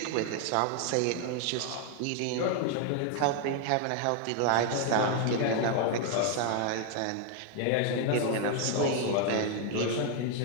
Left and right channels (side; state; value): both; different; correlation 0.00